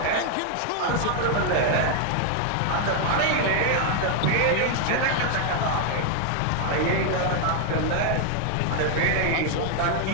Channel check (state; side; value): different; both; correlation 0.00